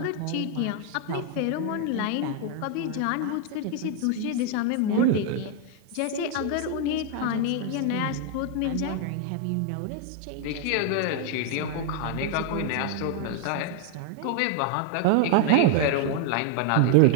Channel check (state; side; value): different; both; correlation 0.00